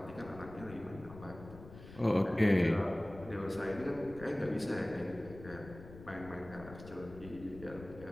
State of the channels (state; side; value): noise; left; rumble, 16 dB below the sound